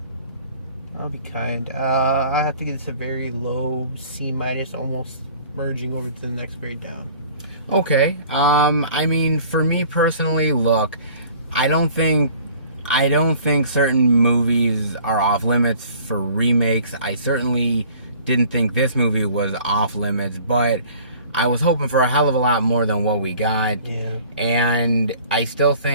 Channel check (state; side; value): inverted; both; correlation -0.50